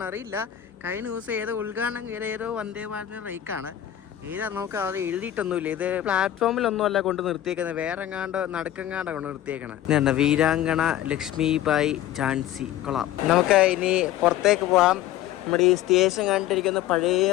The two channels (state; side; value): quieter; right; 12.4 dB